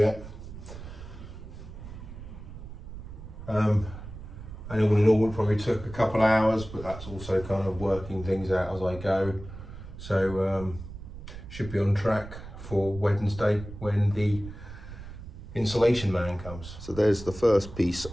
And all in all, it probably took a couple of hours, but that's also kind of working things out as I go. So should be on track for Wednesday when the insulation man comes. So there's the first piece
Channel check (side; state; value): right; noise; rumble, 12 dB below the sound